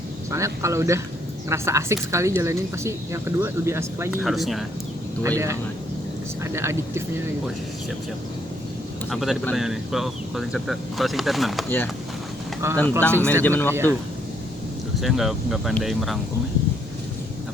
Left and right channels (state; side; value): normal; both; correlation 0.71